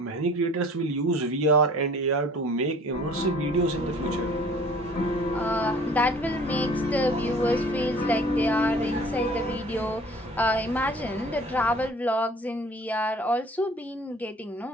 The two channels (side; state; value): both; normal; correlation 0.50